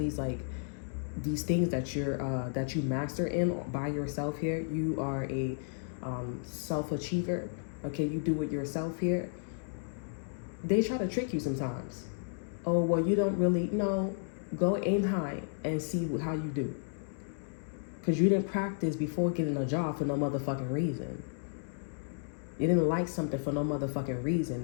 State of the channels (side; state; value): right; silent; digital silence